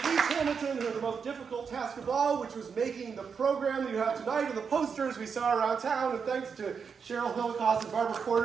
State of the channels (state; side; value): quieter; left; 6.1 dB